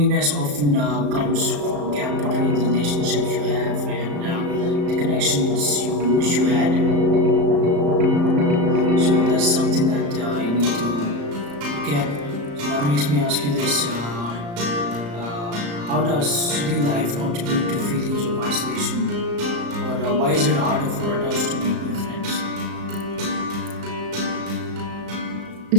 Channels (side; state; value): left; late; 35 ms